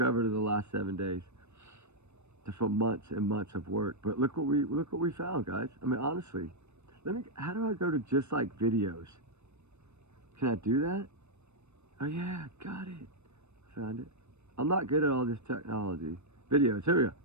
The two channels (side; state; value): left; late; 0.81 ms